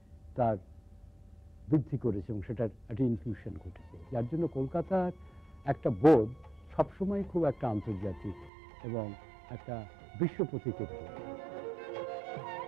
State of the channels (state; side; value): drops out; left; at 8.5 s